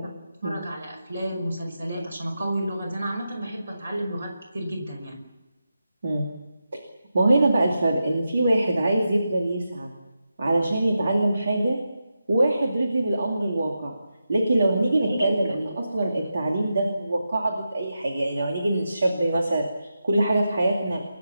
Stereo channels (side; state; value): both; inverted; correlation -0.89